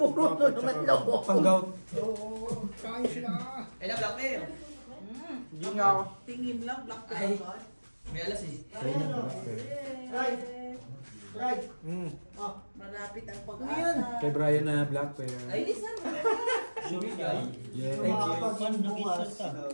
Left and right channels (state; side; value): inverted; both; correlation -1.00